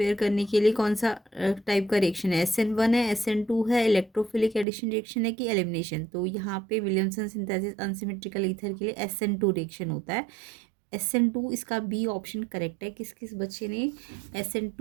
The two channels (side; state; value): left; drops out; at 4.7 s